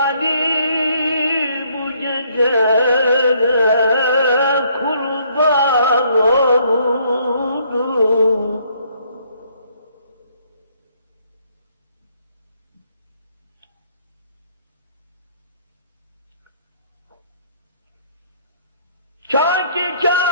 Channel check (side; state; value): both; inverted; correlation -0.66